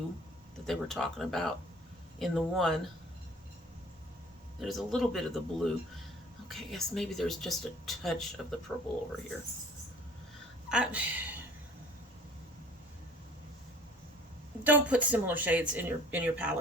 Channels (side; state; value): both; normal; correlation 0.49